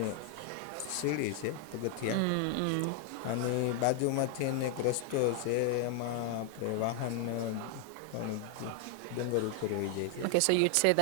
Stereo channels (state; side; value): different; both; correlation 0.00